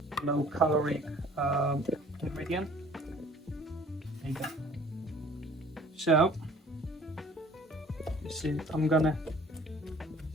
low caloric ingredient. There you go. So you see, I'm gonna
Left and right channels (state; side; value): normal; both; correlation 0.52